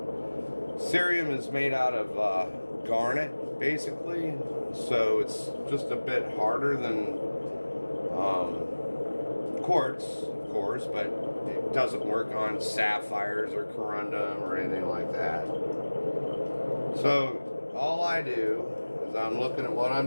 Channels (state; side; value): inverted; both; correlation -1.00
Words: Cerium is made out of garnet, basically. So it's just a bit harder than quartz, of course, but it doesn't work on sapphires or corundum or anything like that. So all I do is I'm looking at what